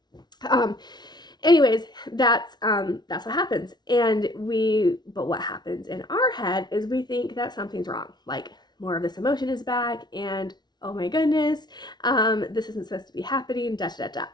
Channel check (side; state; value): right; late; 0.20 ms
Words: um anyways, that's what happens. But what happens in our head is we think that something's wrong, like more of this emotion is back, and oh my goodness, this isn't supposed to be happening, da da da.